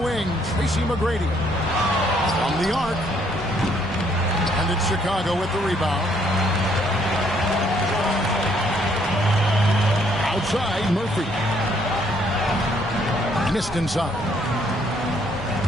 Tracy McGrady. From the arc. And it's Chicago with the rebound. Outside, Murphy. Missed inside.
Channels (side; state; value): both; normal; correlation 0.67